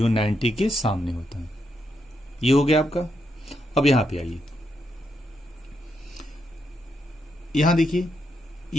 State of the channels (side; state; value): both; normal; correlation 0.81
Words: 90 के सामने होता है। ये हो गया आपका। अब यहां पे आइए, यहां देखिए